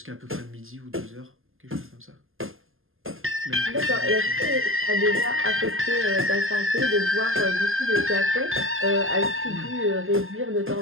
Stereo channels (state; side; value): late; left; 0.60 ms